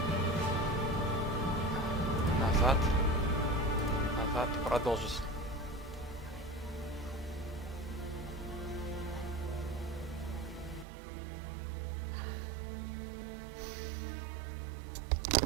Назад. Назад. Продолжить.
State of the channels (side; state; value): left; drops out; at 10.9 s